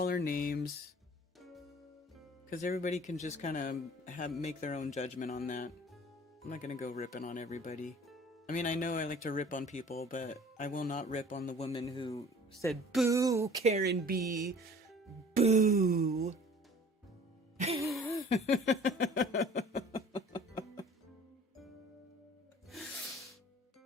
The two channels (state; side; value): normal; both; correlation 0.48